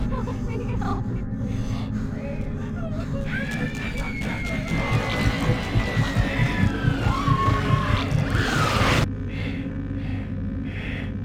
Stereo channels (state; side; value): identical; both; correlation 1.00